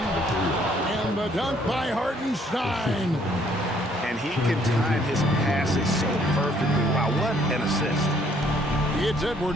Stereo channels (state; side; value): normal; both; correlation 0.64